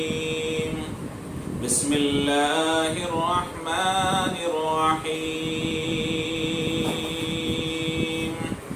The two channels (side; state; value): both; identical; correlation 1.00